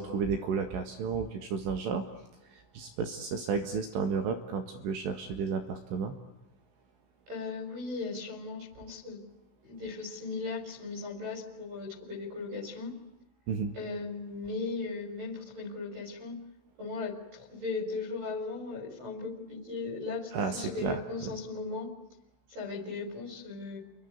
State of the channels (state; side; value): late; left; 16 ms